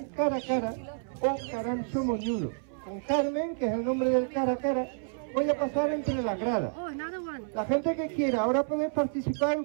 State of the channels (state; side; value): silent; left; 58 dB below the other